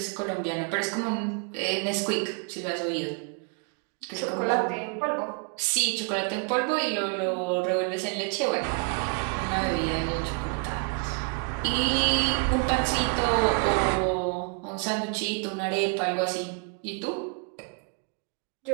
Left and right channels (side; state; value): left; quieter; 37.3 dB